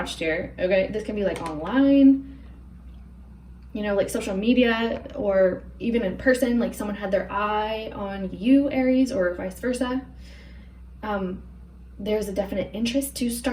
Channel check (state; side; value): identical; both; correlation 1.00